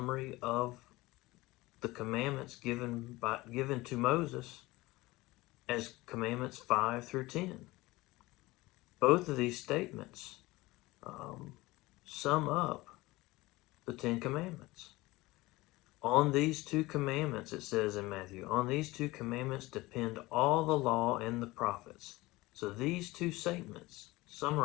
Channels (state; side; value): quieter; right; 20.3 dB